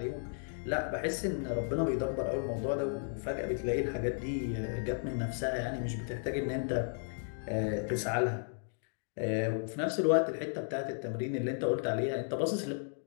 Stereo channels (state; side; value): silent; right; digital silence